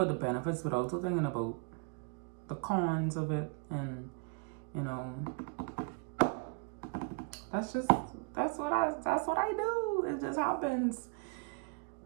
the benefits, but also thinking about the cons of it. And, that's what I do. It just happens,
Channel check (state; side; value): quieter; left; 34.5 dB